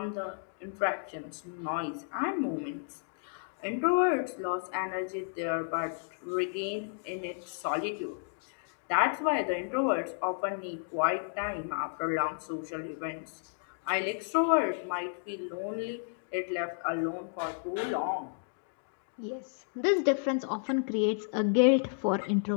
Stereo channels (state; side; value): silent; right; digital silence